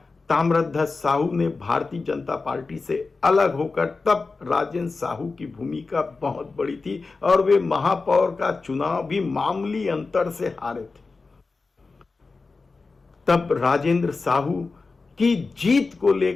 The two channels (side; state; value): right; quieter; 4.0 dB